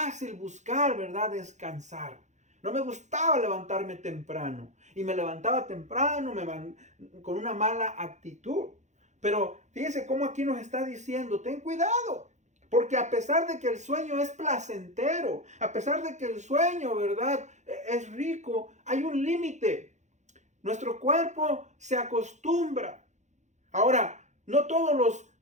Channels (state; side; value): late; left; 0.34 ms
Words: buscar, ¿verdad? Descansar. No me gustaba levantarme temprano. Y me levantaba temprano con una mala actitud. Pero fíjese cómo aquí nos está diciendo, ten cuidado. Porque a pesar de que el sueño es placentero, a pesar de que el sueño, ¿verdad?, es rico, hay un límite. Nuestro cuerpo se acostumbra. Ahora, no todos